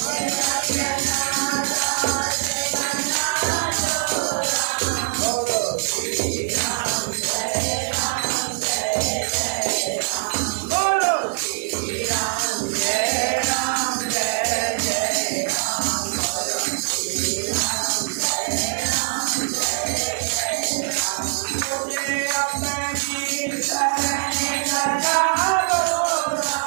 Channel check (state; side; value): silent; left; digital silence